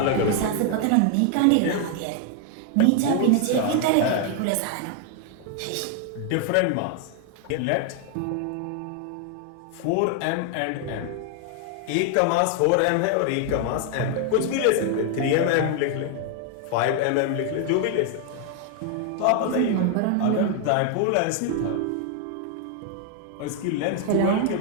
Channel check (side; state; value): both; different; correlation 0.00